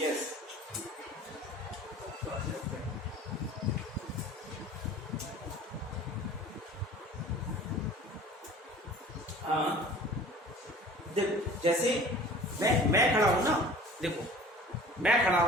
हाँ देखो, जैसे मैं खड़ा हूं ना, देखो मैं खड़ा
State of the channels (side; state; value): both; normal; correlation 0.45